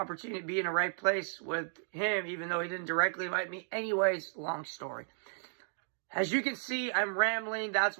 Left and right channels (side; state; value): left; silent; digital silence